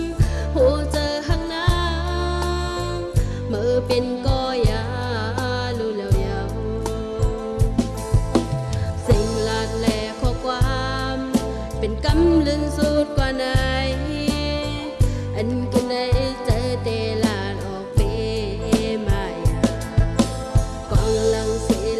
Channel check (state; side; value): identical; both; correlation 1.00